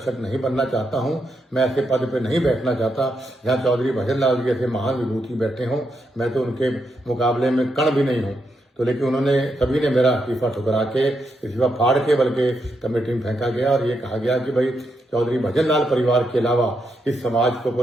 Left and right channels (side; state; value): both; normal; correlation 0.82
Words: नहीं बनना चाहता हूं, मैं ऐसे पद पे नहीं बैठना चाहता जहां चौधरी भजन लाल जी जैसे महान विभूति बैठे हों। मैं तो उनके मुकाबले में कण भी नहीं हूं। तो लेकिन उन्होंने सभी ने मेरा इस्तीफा ठुकरा के, इस्तीफा फाड़ के बल्कि कमेटी में फेंका गया और ये कहा गया कि भाई चौधरी भजन लाल परिवार के अलावा इस समाज को